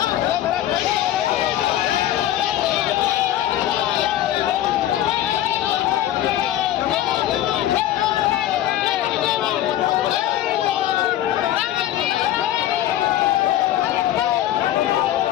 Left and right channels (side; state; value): right; quieter; 12.8 dB